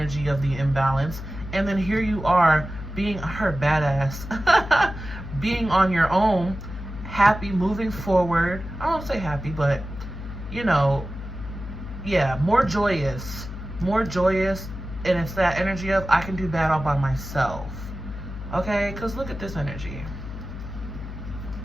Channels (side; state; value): left; noise; hum, 9 dB below the sound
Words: of the imbalance. And then here you are being her badass, being on your own, happy, moving forward. I won't say happy, but, you know, yeah, more joyous, and it's that energy of, I can do bad all by myself, okay? Because look at this energy.